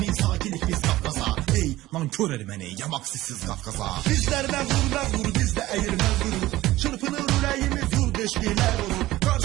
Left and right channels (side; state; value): left; quieter; 16.7 dB